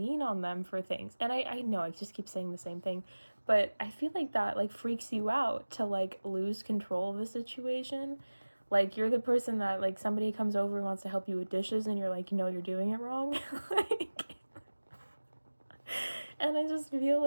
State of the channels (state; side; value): inverted; both; correlation -1.00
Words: on them for things. And I know I just keep saying the same thing, but I feel like that like freaks you out to like lose control of the situation. Like you're the person that like somebody comes over and wants to help you with dishes, and you're like, you know, you're doing it wrong. Like, and I just feel